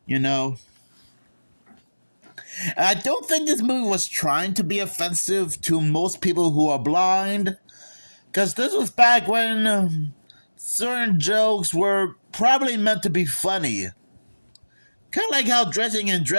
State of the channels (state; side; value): inverted; both; correlation -1.00